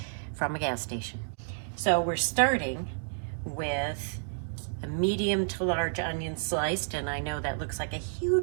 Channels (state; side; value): silent; left; digital silence